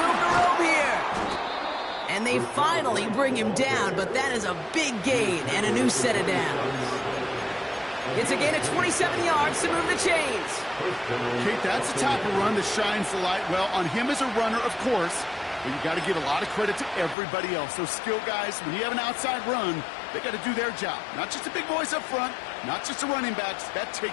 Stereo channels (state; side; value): drops out; right; at 17.2 s